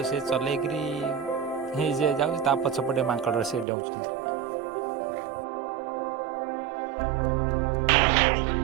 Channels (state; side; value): drops out; left; at 3.7 s